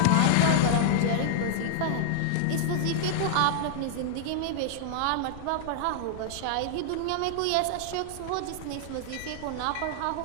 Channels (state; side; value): different; both; correlation -0.01